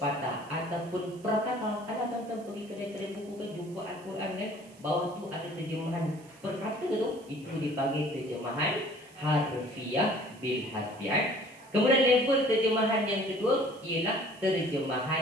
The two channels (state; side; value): noise; right; hiss, 26 dB below the sound